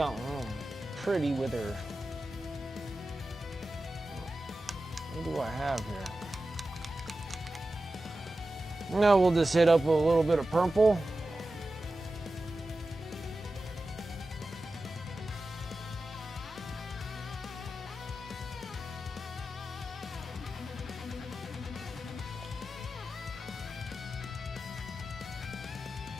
pretty with her. What do I have here? Now we'll just hit up with a little bit of purple.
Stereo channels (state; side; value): normal; both; correlation 0.93